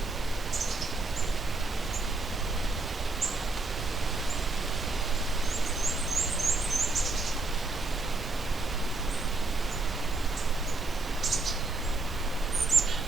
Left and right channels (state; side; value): quieter; left; 3.2 dB